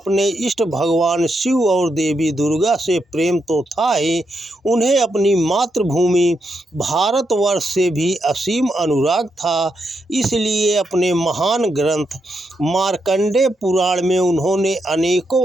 इष्ट भगवान शिव और देवी दुर्गा से प्रेम तो था ही, उन्हें अपनी मातृभूमि भारतवर्ष से भी असीम अनुराग था। इसलिए अपने महान ग्रंथ मार्कंडेय पुराण में उन्होंने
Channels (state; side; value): normal; both; correlation 0.82